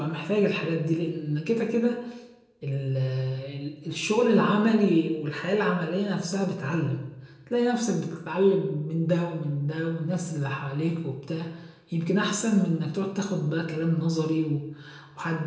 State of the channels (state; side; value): identical; both; correlation 1.00